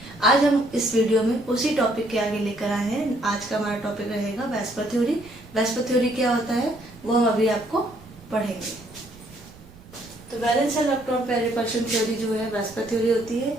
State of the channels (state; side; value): noise; right; rumble, 22 dB below the sound